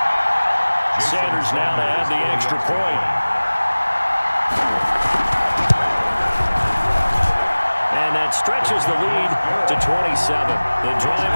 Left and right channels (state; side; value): inverted; both; correlation -1.00